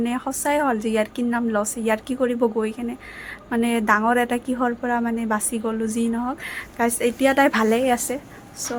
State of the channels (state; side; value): identical; both; correlation 1.00